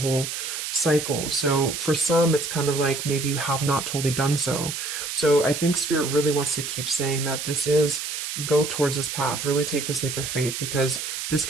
cycle. So for some, it's kind of like maybe you have not totally done so. So I think Spirit really wants to keep saying that this is go towards this path. Really take this leap of faith, because this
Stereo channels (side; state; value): right; noise; hiss, 5 dB below the sound